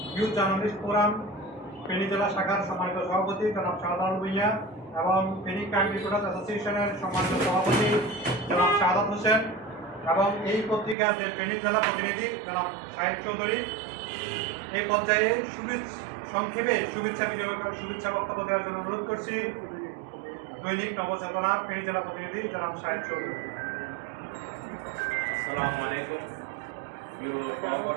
ইউথ জার্নালিস্ট ফোরাম ফেনী জেলা শাখার সম্মানিত সভাপতি জনাব শাহজালাল ভূঁইয়া এবং ফেনী ক্রাইম রিপোর্টার্স অ্যাসোসিয়েশনের সম্মানিত সভাপতি জনাব শাহাদাত হোসেন এবং এই পত্রিকার যে ফেনী জেলা প্রতিনিধি জনাব সাহেব চৌধুরী। এই পর্যায়ে সংক্ষেপে শুভেচ্ছা বক্তব্য দেওয়ার জন্য অনুরোধ করছি দৈনিক নবচেতনার ফেনী জেলা প্রতিনিধি জনাব সাহেব চৌধুরী। আসসালামু আলাইকুম প্রিয়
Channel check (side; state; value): left; drops out; at 11.0 s